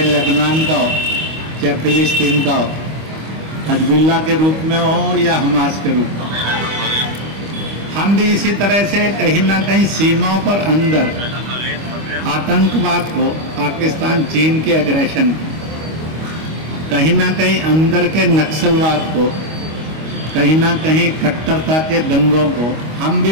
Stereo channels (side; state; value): left; late; 25 ms